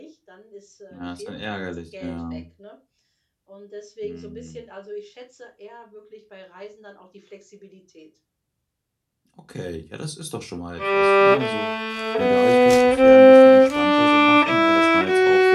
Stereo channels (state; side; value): identical; both; correlation 1.00